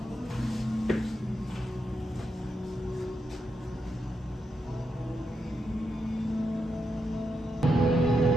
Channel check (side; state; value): both; normal; correlation 0.84